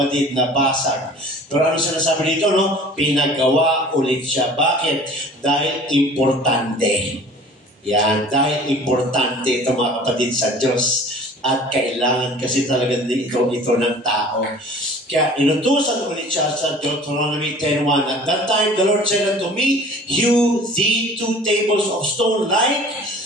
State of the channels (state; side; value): normal; both; correlation 0.46